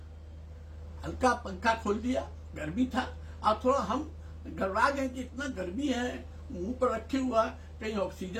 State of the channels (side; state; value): both; identical; correlation 1.00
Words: हल्का पंखा खोल दिया, गर्मी था। और थोड़ा हम घबरा गए कि इतना गर्मी है, मुंह पर रखे हुआ, कहीं